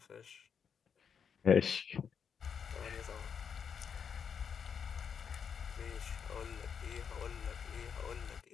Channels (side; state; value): right; quieter; 7.0 dB